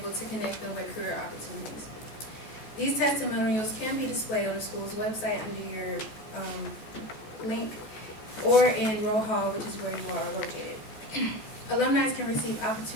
to connect them with career opportunities. These testimonials can be displayed on the school's website under your link or in Roll Hall, which is where you are located. Alumni can receive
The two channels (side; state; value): right; late; 14 ms